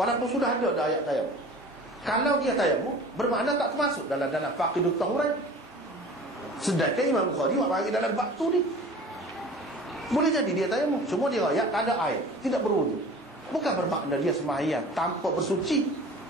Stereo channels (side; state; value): both; normal; correlation 0.42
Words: sudah ada dah ayat tayamum. Kalau dia tayamum bermakna tak termasuk dalam faqidut tahuran. Sedangkan Imam Bukhari buat bagi dalam bab tu ni. Boleh jadi dia tayamum, cuma dia ayat tak ada air, tidak berwudu. Bukan bermakna dia sembahyang tanpa bersuci.